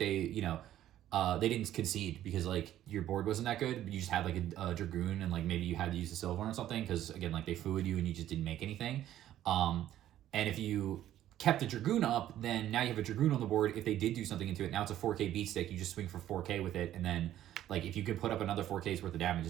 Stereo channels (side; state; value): left; quieter; 12.4 dB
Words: didn't concede because like your board wasn't that good. You just had like a Dragoon and like maybe you had to use a Silver or something because again like they fooed you and you just didn't make anything. And if you kept the Dragoon up, then now you have a Dragoon on the board. If they did do something into it, now it's a 4K beat stick. You just swing for 4K with it and then like if you could put up another 4K's worth of damage,